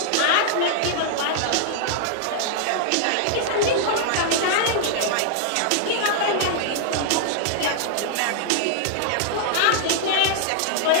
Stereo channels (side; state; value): both; different; correlation -0.01